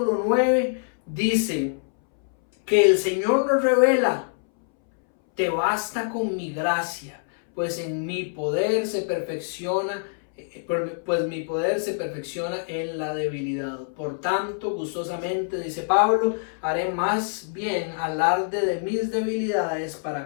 9, dice que el Señor nos revela: te basta con mi gracia, pues mi poder se perfecciona en la debilidad. Por tanto, gustosamente, dice Pablo, haré más bien alarde de mis debilidades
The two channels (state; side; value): silent; right; 62 dB below the other